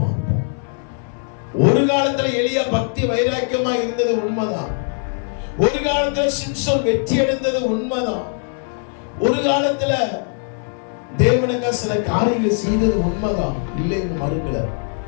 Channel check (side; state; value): right; silent; 60 dB below the other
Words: ஒரு காலத்துல எலியா பக்தி வைராக்கியமா இருந்தது உண்மைதான். ஒரு காலத்துல சிம்சோன் வெற்றி அடைந்தது உண்மைதான். ஒரு காலத்துல தேவனுக்கு சில காரியங்கள் செய்தது உண்மைதான், இல்லைன்னு மறுக்கல.